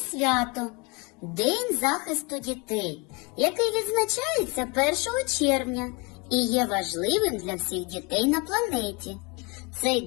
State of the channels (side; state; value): right; quieter; 28.6 dB